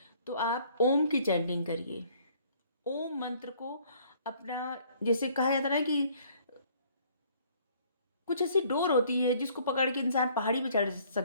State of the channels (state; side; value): inverted; both; correlation -0.59